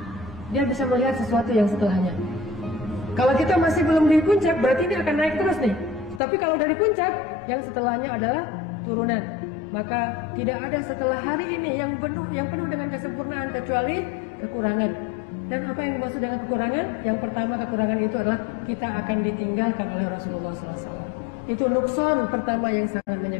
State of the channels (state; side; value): drops out; right; at 6.2 s